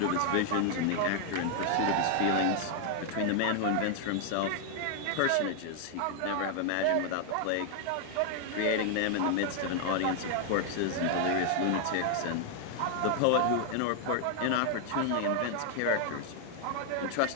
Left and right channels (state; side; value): different; both; correlation 0.00